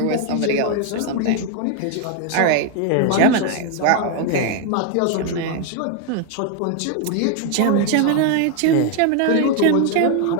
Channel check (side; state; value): both; different; correlation 0.01